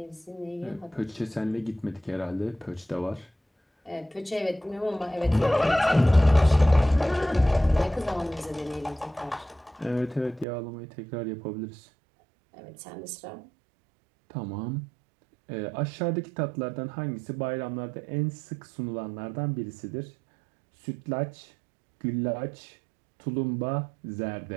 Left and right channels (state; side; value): drops out; left; at 10.5 s